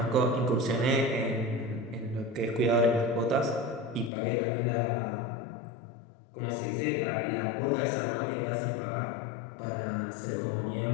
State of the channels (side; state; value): right; drops out; at 4.1 s